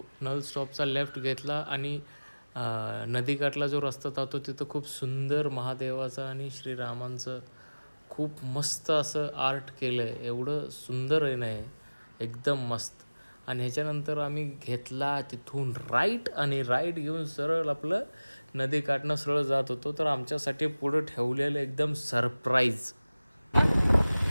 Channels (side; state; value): both; inverted; correlation -0.99